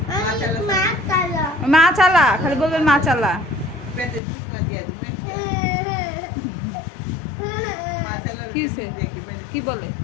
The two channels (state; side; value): drops out; right; at 4.2 s